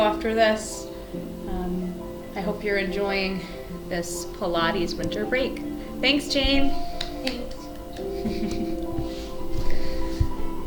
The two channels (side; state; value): both; identical; correlation 1.00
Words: this. I hope you're enjoying this Pilates winter break. Thanks, Jane. Thanks.